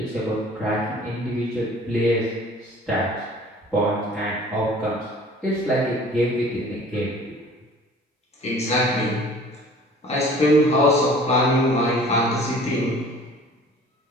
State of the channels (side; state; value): both; normal; correlation 0.49